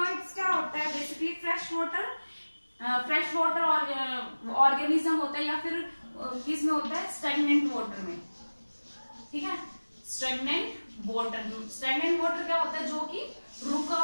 क्या होता है, बेसिकली फ्रेश वाटर ऑर्गेनिज्म होता है, या फिर किस में होता है, स्टैग्नेंट वाटर में। ठीक है, स्टैग्नेंट वाटर क्या होता है, जो कि रुका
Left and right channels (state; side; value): inverted; both; correlation -1.00